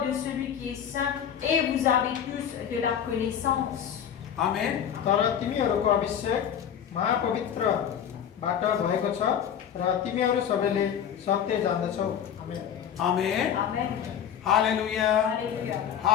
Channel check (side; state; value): right; quieter; 8.9 dB